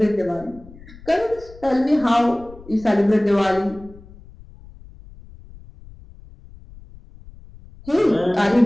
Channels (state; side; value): noise; left; rumble, 20 dB below the sound